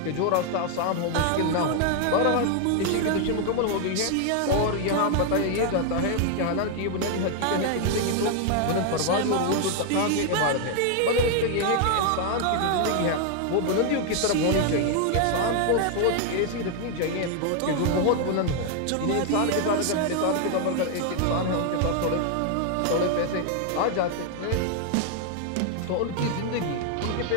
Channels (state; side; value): different; both; correlation 0.00